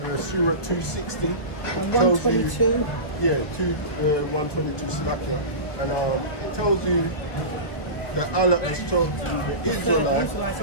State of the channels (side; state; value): right; late; 1.2 ms